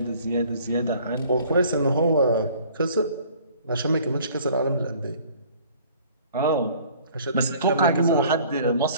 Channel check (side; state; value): both; inverted; correlation -0.53